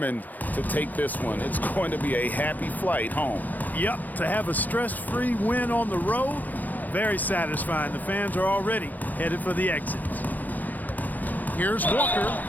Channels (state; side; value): late; right; 0.082 ms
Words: to take this one. It's going to be a happy flight home. Yep, to have a stress-free win on the road, very satisfying. The fans are already headed for the exits. Here's Walker,